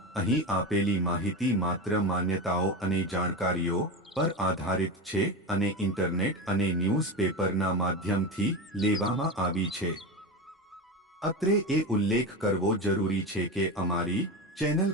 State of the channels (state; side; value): normal; both; correlation 0.22